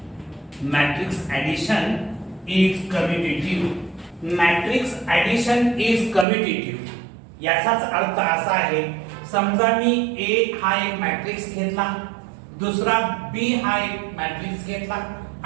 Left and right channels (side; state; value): left; drops out; at 6.2 s